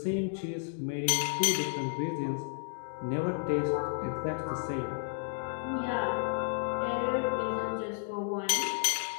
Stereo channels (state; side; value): silent; right; digital silence